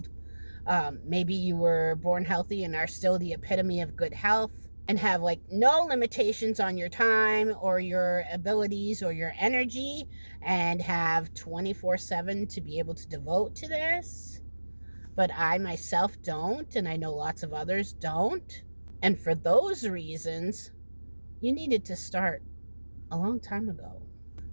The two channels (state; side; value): inverted; both; correlation -1.00